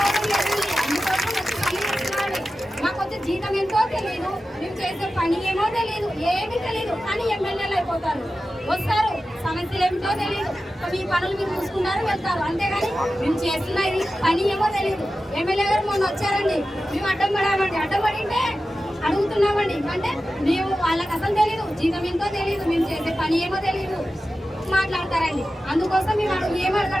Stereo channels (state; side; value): normal; both; correlation 0.93